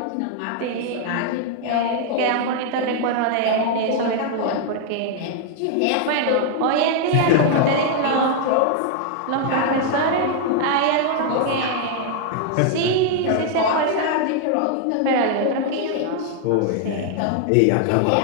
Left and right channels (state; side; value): different; both; correlation 0.00